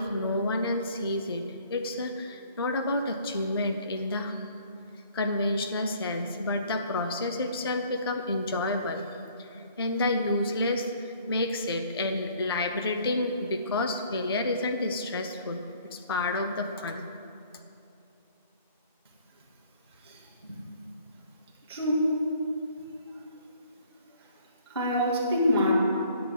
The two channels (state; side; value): inverted; both; correlation -0.57